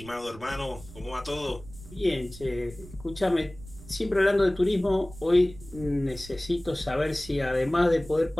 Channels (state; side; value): noise; right; rumble, 17 dB below the sound